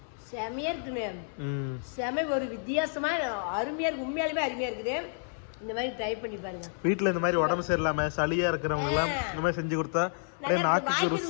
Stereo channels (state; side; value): silent; right; 58 dB below the other